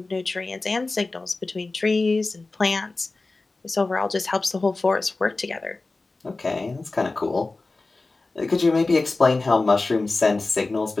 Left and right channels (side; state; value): right; quieter; 3.4 dB